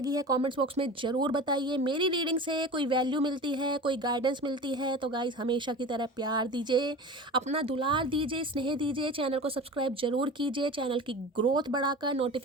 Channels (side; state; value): both; normal; correlation 0.34